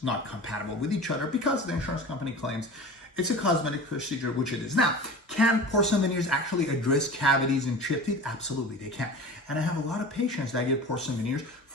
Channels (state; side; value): normal; both; correlation 0.35